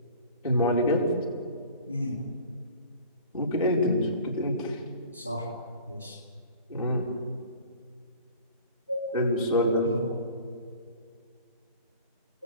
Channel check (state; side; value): inverted; both; correlation -0.45